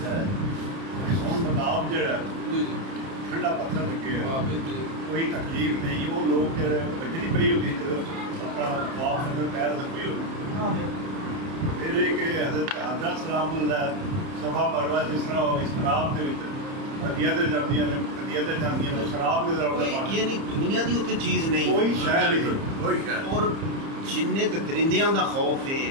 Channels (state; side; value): late; left; 30 ms